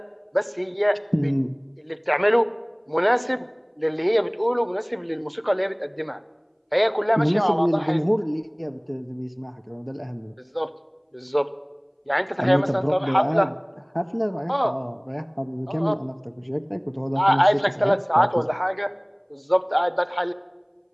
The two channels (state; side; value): identical; both; correlation 1.00